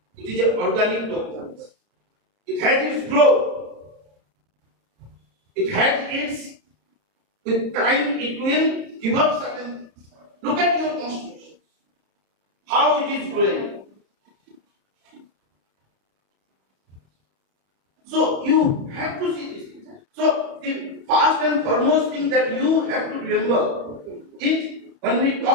It is an organic document. It has its growth. It has its, with time it will give up certain things. Look at your constitution. How it is growing. So you have to see this. So the first and foremost thing that you have to remember is when we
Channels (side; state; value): left; late; 30 ms